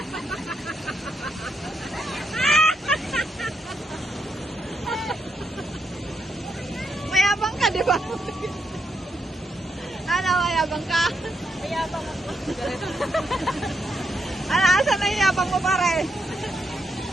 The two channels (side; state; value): both; normal; correlation 0.81